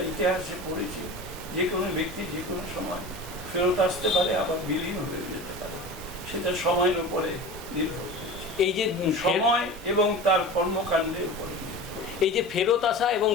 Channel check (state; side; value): normal; both; correlation 0.33